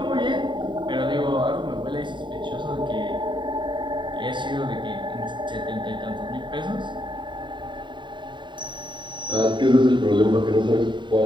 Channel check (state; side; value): late; left; 0.23 ms